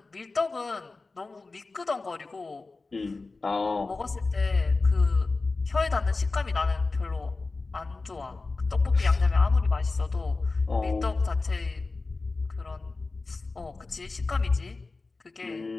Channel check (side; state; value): right; quieter; 3.7 dB